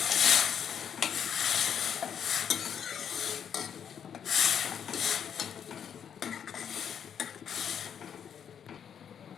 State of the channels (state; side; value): quieter; right; 8.3 dB